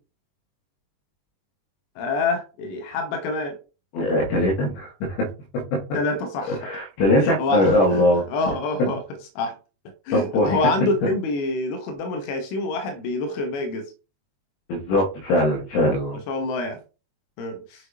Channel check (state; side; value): late; right; 21 ms